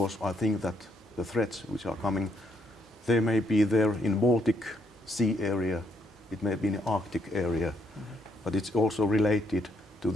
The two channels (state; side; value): normal; both; correlation 0.74